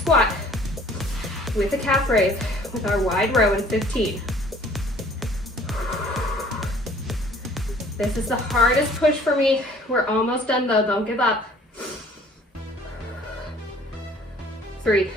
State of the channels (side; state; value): both; normal; correlation 0.54